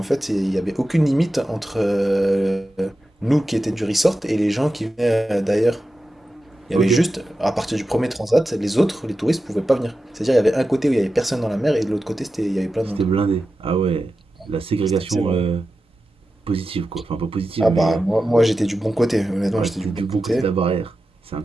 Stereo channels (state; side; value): normal; both; correlation 0.92